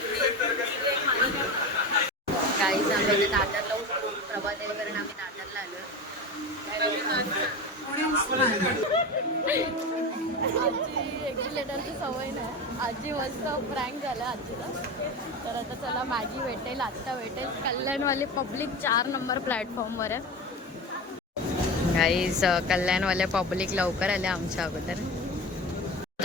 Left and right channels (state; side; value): normal; both; correlation 0.26